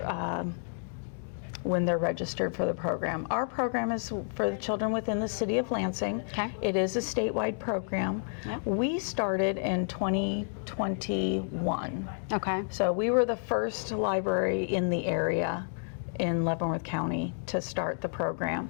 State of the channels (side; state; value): right; silent; digital silence